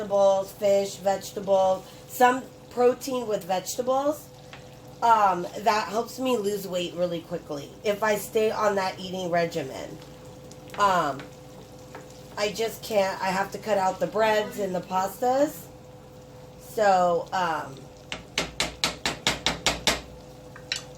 fish, vegetables, some protein with vegetables, that helps me lose weight really quickly if I stay on that eating regimen. I just can't. I have to cut out the breads and the pastas. So,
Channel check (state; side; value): identical; both; correlation 1.00